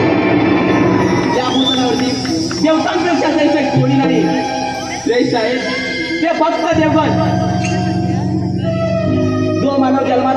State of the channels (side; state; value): left; noise; hum, 28 dB below the sound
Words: या भूतलावरती देवतांपेक्षा दैत्य कोणी नाही. श्रेष्ठ आहे ते फक्त देवगण. जो मानव